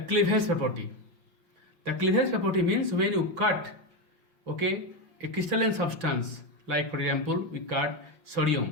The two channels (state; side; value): late; left; 5.5 ms